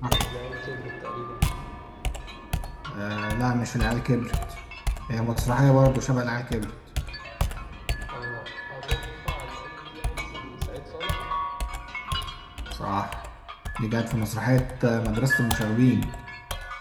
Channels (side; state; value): both; identical; correlation 1.00